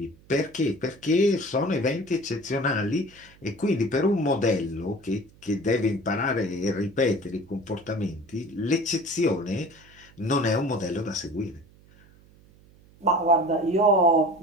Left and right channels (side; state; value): right; noise; hum, 27 dB below the sound